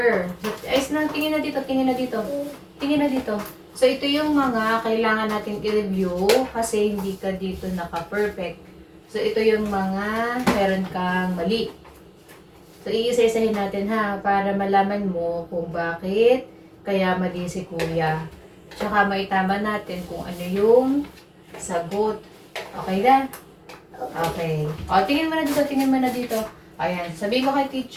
Ayos na, tingin na dito, tingin na dito. Tingin na dito. So, ito yung mga kailangan natin i-review kasi hindi ka dito naka-perfect. So, ito yung mga meron kang mali. So, iisa-isahin natin ha, para malaman mo kung bakit kaya mali si kuya. Tsaka maitama natin kung ano yung sagot. Okay na? Okay. O, tingin mo na dito, tingin mo na dito. Ayan, sabihin mo kay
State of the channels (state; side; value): identical; both; correlation 1.00